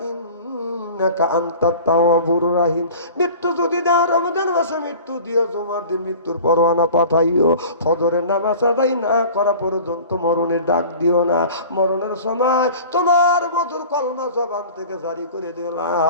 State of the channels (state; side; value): inverted; both; correlation -0.41